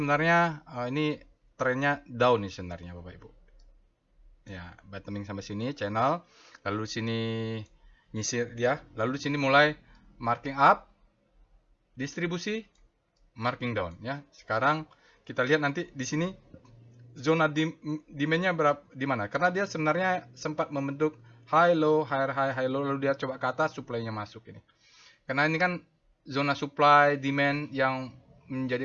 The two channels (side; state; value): both; identical; correlation 1.00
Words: ini trennya down nih sebenarnya Bapak Ibu. Ya, bottoming sampai sini channel, lalu sini nyisir dia, lalu sini mulai marking up, distribusi, marking down ya. Sekarang kita lihat nanti di sini zona demand-nya berapa di mana? Karena dia sebenarnya sempat membentuk high low, high low, lalu dia coba ke atas, supply-nya masuk ini. Karena ini kan zona supply demand yang